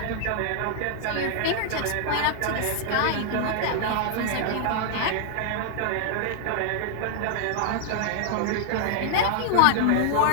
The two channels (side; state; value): both; different; correlation 0.00